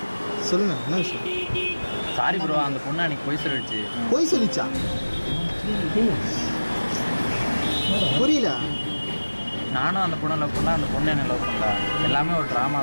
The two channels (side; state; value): both; inverted; correlation -1.00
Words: சொல்லுங்க என்ன விஷயம்? சாரி ப்ரோ, அந்த பொண்ணு அன்னைக்கு போய் சொல்லிடுச்சு. போய் சொல்லிச்சா? புரியல. நானும் அந்த பொண்ணை லவ் பண்ணல, அந்த பொண்ணு என்ன லவ் பண்ணல. எல்லாமே ஒரு ட்ராமா